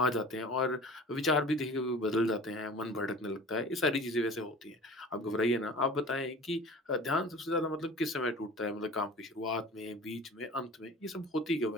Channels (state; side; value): normal; both; correlation 0.41